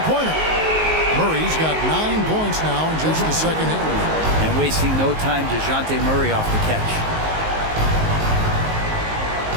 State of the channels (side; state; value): left; late; 19 ms